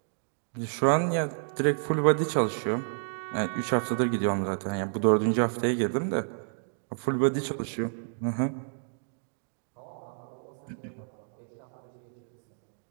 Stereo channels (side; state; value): left; silent; digital silence